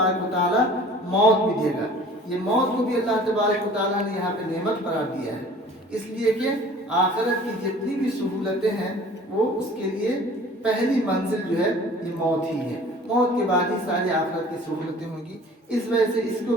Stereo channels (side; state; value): both; normal; correlation 0.48